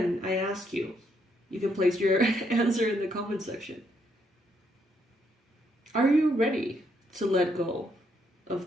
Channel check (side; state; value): both; normal; correlation 0.74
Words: I ask you, you can place your answer in the comment section. Are you ready to let go